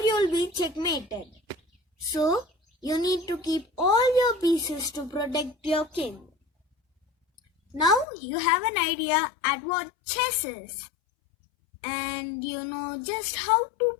you'll be checkmated. So you need to keep all your pieces to protect your king. Now you have an idea at what chess is. And you know just how to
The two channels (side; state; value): right; drops out; at 8.1 s